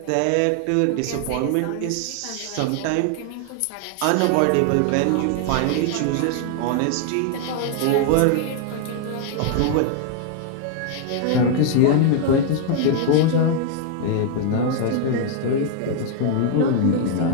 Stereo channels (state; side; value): different; both; correlation 0.00